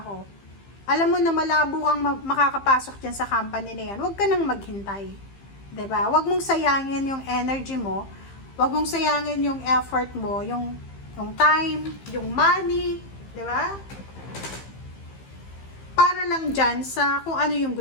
Alam mo na malabo kang makakapasok dyan sa company na yan. Huwag ka nang maghintay. 'Di ba? Huwag mong sayangin yung energy mo. Huwag mong sayangin yung effort mo, yung time, yung money. 'Di ba? Para lang dyan sa kung ano yung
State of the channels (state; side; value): late; right; 15 ms